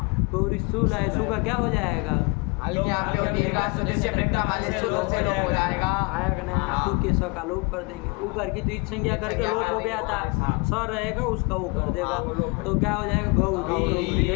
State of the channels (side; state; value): right; quieter; 29.2 dB